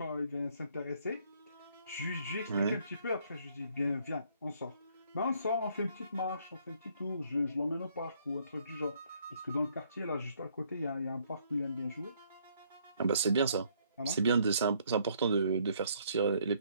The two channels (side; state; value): both; inverted; correlation -0.66